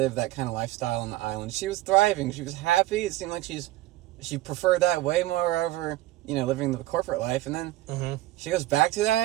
that kind of lifestyle on the island. She was thriving. She was happy. It seemed like she preferred that way more over living the corporate life. And then she goes back to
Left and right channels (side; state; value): left; quieter; 16.5 dB